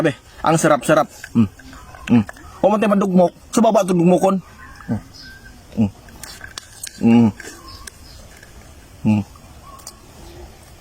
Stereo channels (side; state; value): both; identical; correlation 1.00